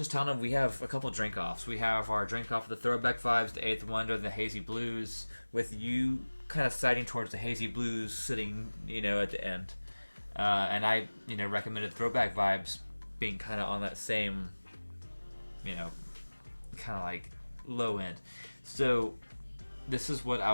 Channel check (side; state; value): both; inverted; correlation -1.00